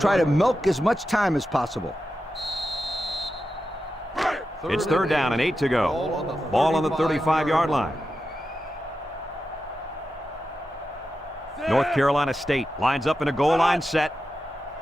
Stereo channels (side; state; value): both; normal; correlation 0.90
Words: to milk as much time as possible. It's 3rd down and 8 to go. Ball on the 35-yard line. North Carolina State lines up in a goal line set.